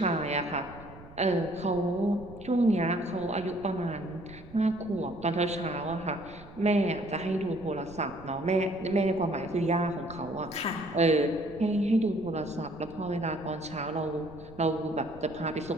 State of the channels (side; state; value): right; noise; rumble, 18 dB below the sound